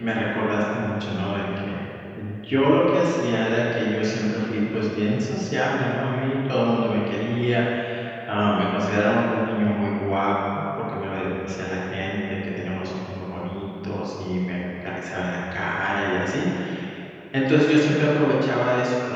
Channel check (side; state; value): both; identical; correlation 1.00